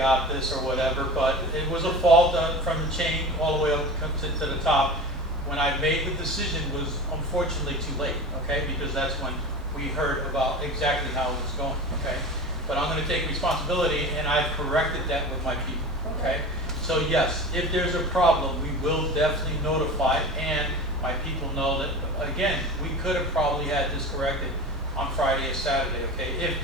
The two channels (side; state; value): both; normal; correlation 0.33